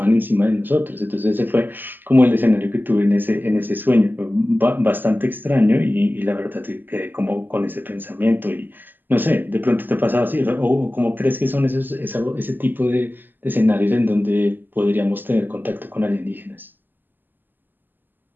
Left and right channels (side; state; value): left; late; 0.091 ms